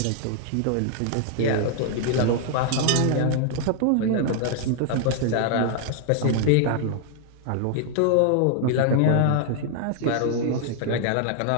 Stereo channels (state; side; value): different; both; correlation 0.00